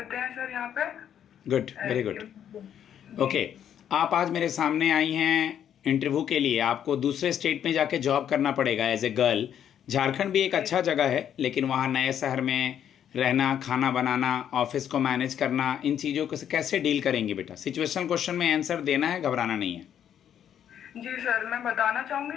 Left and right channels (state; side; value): quieter; right; 9.5 dB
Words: हैं सर यहाँ पे। Good, very good. ओके, आप आज मेरे सामने आई हैं इंटरव्यू के लिए। आपको दूसरे स्टेट में जाके जॉब करना पड़ेगा एज ए गर्ल। झारखंड भी एक अच्छा जगह है, लेकिन वहाँ नए शहर में रहना, खाना बनाना, ऑफिस को मैनेज करना, इन चीज़ों को कैसे डील करेंगे बेटा? सिचुएशनल क्वेश्चन में आंसर देना है, घबराना नहीं है। जी सर, मैं बताना